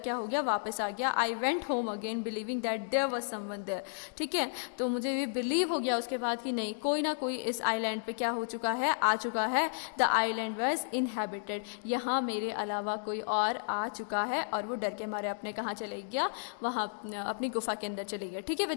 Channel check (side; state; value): right; silent; digital silence